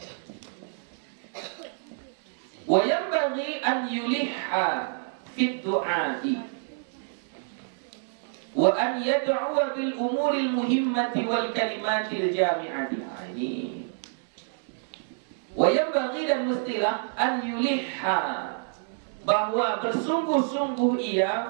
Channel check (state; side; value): silent; left; digital silence